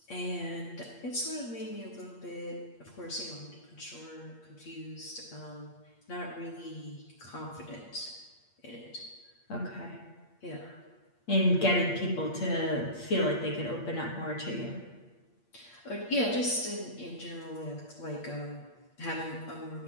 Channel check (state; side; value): late; right; 8.5 ms